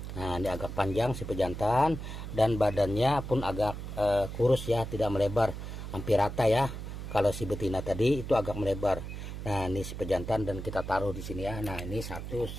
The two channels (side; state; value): right; noise; hum, 8 dB below the sound